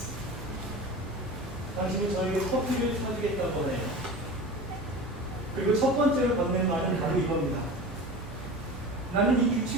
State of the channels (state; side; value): normal; both; correlation 0.33